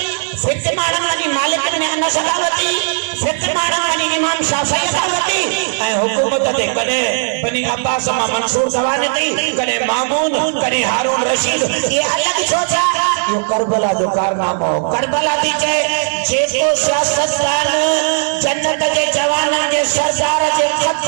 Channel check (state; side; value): silent; left; digital silence